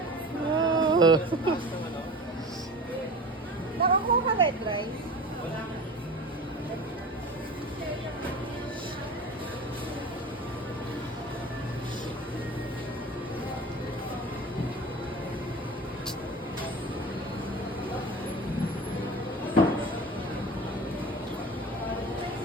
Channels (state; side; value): normal; both; correlation 0.35